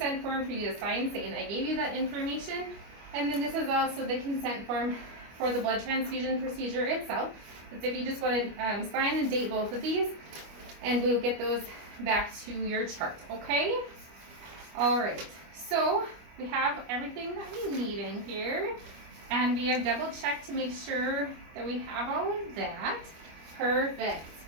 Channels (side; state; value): left; late; 25 ms